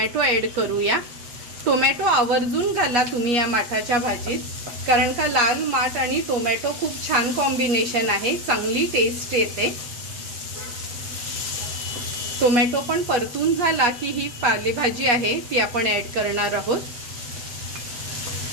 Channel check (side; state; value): left; late; 8.4 ms